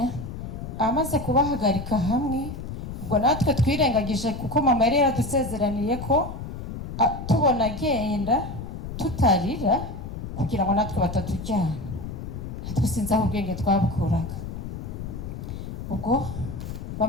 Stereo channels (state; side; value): noise; left; rumble, 8 dB below the sound